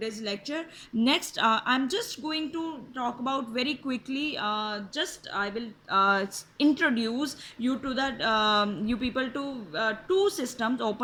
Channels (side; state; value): both; identical; correlation 1.00